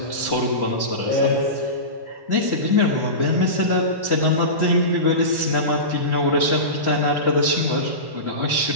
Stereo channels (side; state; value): left; late; 1.1 ms